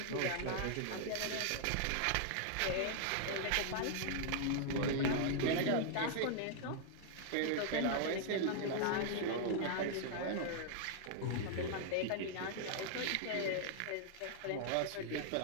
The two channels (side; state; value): both; different; correlation -0.01